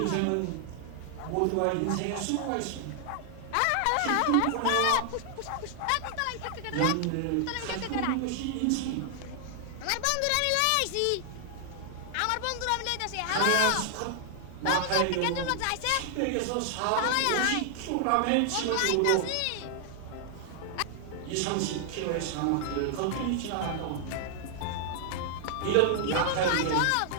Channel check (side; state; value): both; different; correlation 0.00